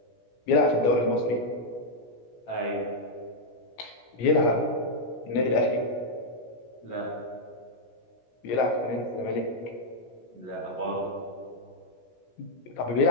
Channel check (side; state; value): right; late; 17 ms